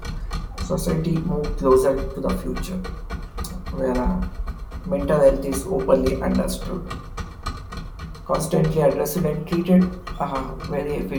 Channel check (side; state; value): both; identical; correlation 1.00